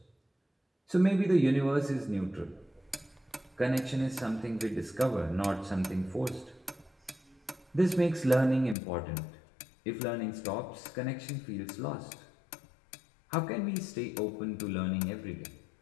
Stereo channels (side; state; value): right; drops out; at 8.8 s